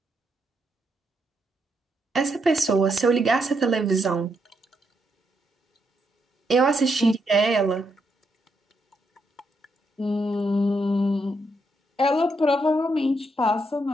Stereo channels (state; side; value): normal; both; correlation 0.79